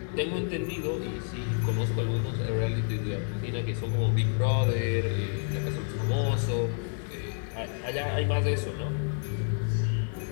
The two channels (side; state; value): right; silent; 57 dB below the other